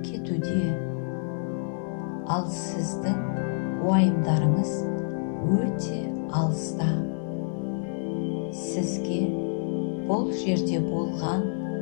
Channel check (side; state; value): right; silent; 60 dB below the other